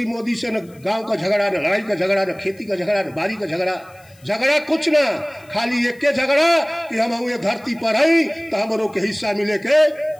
मोदी से, न गांव का झगड़ा, न लड़ाई का झगड़ा, न खेती का झगड़ा, न बारी का झगड़ा, झगड़ा कुछ ना, खाली एक के झगड़ा कि हम ये धरती पर आई तो हम के हिस्सा मिले के।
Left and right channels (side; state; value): left; noise; hiss, 29 dB below the sound